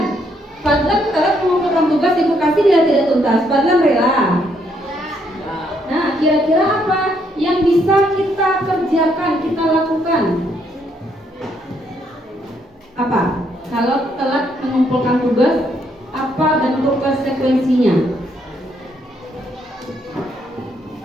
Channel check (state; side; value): normal; both; correlation 0.72